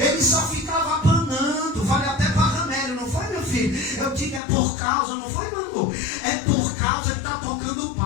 só ficava apanando. Falei até para Ramério, não foi, meu filho? Eu digo, é por causa, não foi, meu amor? É por causa, ele está tocando o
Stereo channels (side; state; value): right; drops out; at 4.4 s